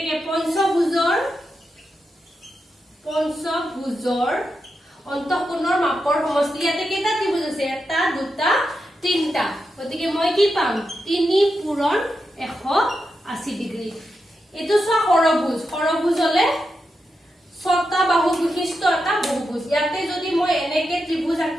পঞ্চভুজৰ অন্তঃকোণৰ মাপৰ সমষ্টি ইয়াতে কেইটা ত্ৰিভুজ আছে এটা দুটা তিনটা গতিকে মই কি পাম 3 পূৰণ 180 ডিগ্ৰী এটো সৰভুজ হলে ছটা বাহু বিশিষ্ট এটা বহুভুজ ইয়াতে যদি মই এনেকে ত্ৰিভুজ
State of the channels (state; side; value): normal; both; correlation 0.87